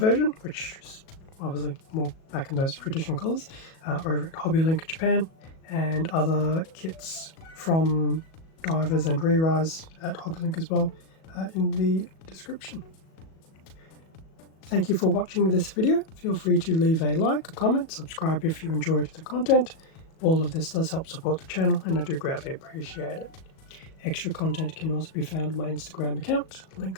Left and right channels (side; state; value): right; late; 37 ms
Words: which is obviously more back in those traditional colours, over at Hobby Link Japan, and other kits from divers and re-rise at Hobby Link as well in the description. Thank you for watching this video. Feel free to leave a like, a comment, subscribe if you enjoyed the content. All of this does help support the channel and I do greatly appreciate it. Extra content can also be found on my Instagram account,